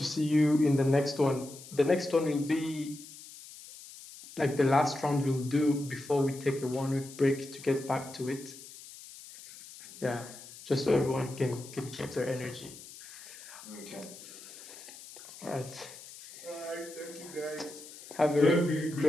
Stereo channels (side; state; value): left; noise; hiss, 16 dB below the sound